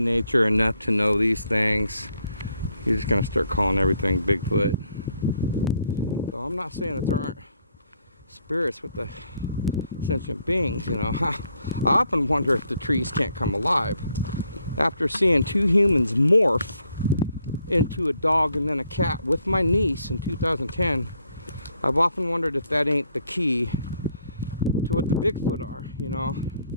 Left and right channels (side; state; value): both; inverted; correlation -0.72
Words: enough to know these things, you're just gonna start calling everything Bigfoot. So I'm not saying that there aren't spirits with the sentient beings, you know. I often wonder if the trees can't come alive. After seeing two humans morph into a dog and then a cat with my niece in 2010, I've often wondered if that ain't the key to what the Bigfoot are, you know.